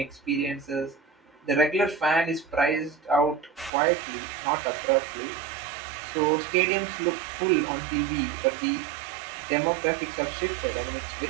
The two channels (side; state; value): left; drops out; at 3.7 s